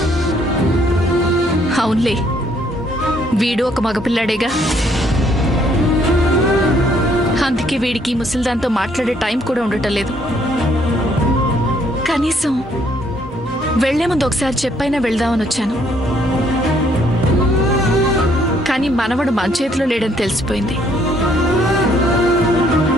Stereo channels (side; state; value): both; normal; correlation 0.67